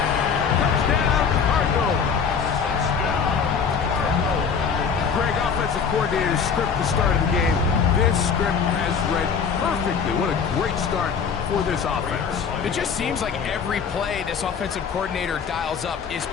Touchdown, Cardinals. Greg, offensive coordinator's script to start of the game. This script has read perfectly. What a great start for this offense. It just seems like every play this offensive coordinator dials up is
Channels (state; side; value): quieter; right; 6.4 dB